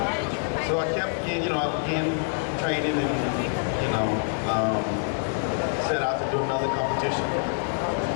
So I kept getting, I began training and, set out to do another competition.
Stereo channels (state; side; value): silent; right; digital silence